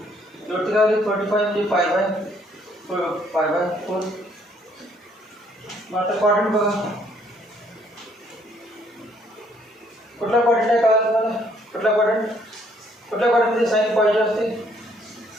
शेवटी काय होईल 45 म्हणजे पाय बाय 4. मग आता क्वाड्रंट बघा, कुठला क्वाड्रंट आहे कळलं तुम्हाला? कुठल्या क्वाड्रंटमध्ये साईन पॉझिटिव्ह असते?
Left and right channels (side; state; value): both; normal; correlation 0.66